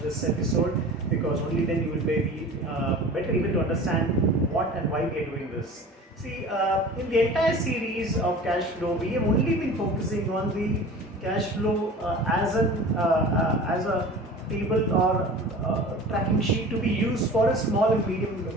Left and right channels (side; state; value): both; normal; correlation 0.39